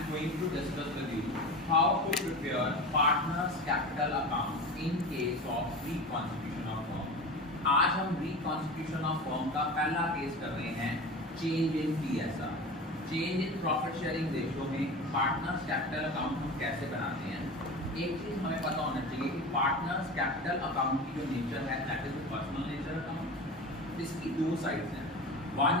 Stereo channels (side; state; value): both; normal; correlation 0.31